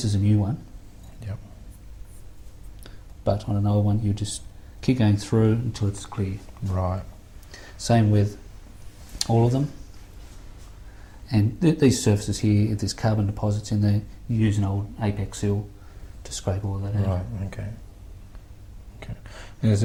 is a new one. Yep. But on an old one you just keep going through until it's clear. Right. Same with all of them. And these surfaces here, if there's carbon deposits in there, you use an old Apex seal to scrape all that out. Right. Okay. Okay. And is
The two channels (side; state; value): both; identical; correlation 1.00